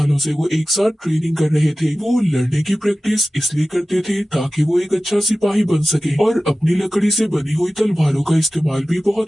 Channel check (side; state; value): both; normal; correlation 0.96